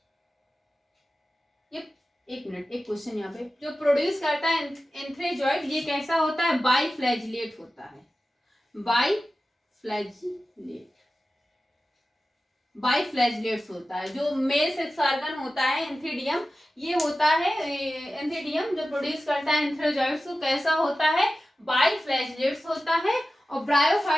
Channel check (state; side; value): normal; both; correlation 0.94